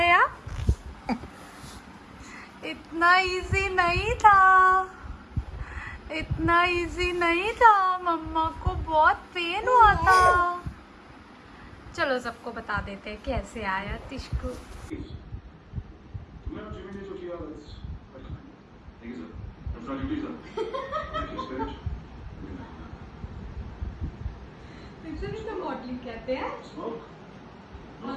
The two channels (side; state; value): both; identical; correlation 1.00